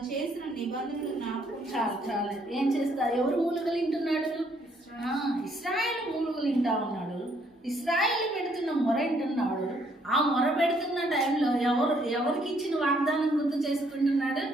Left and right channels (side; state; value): both; normal; correlation 0.68